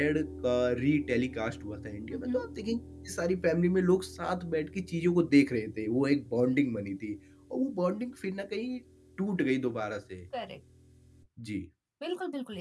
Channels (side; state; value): both; identical; correlation 1.00